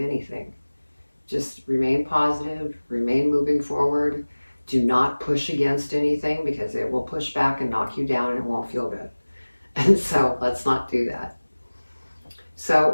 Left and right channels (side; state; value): both; inverted; correlation -1.00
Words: Just remain positive, remain moving forward. Do not push against anything, because it will push back and knock you down and it won't feel good. And so let's not do that.